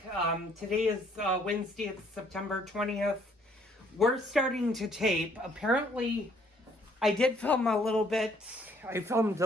Today is Wednesday, it's September 20th. We're starting to tape. Apparently, I did film a little bit. I filmed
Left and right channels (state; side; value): normal; both; correlation 0.64